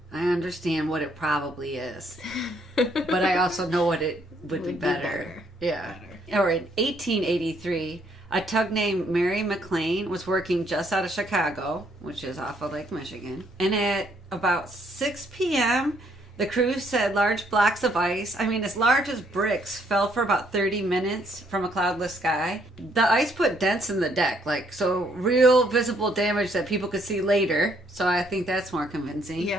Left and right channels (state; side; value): normal; both; correlation 0.69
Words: I understand what it probably is. But I also know what it would be better. Yeah. Or in 1883, a tug named Mary McLean was working just out of Chicago, which is off of Lake Michigan. And at about 6 p.m., the crew said large blocks of ice, as large as bricks, fell for about 30 minutes from a cloudless sky. The ice put dents in the deck, so real visible damage that people could see later. So I think that's more convincing.